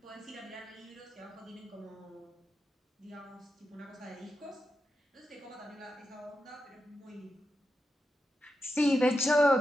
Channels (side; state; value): both; normal; correlation 0.88